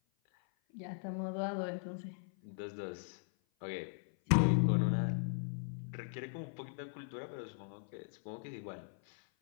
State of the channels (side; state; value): right; silent; 52 dB below the other